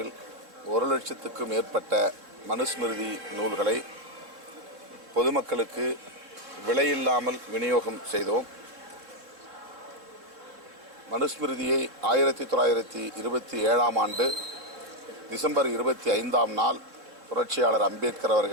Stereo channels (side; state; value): left; late; 3.6 ms